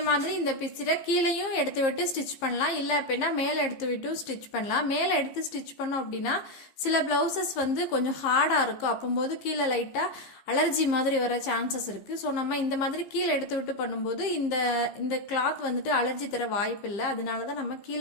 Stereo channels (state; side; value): late; right; 15 ms